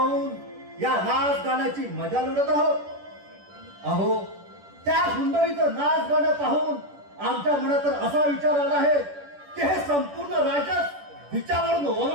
या नाच गाण्याची मजा लुटत आहोत. अहो त्या सुंदरीचं नाच गाणं पाहून आमच्या मनात तर असा विचार आला आहे की हे संपूर्ण राज्यात हिच्यावरून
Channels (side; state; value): left; late; 10 ms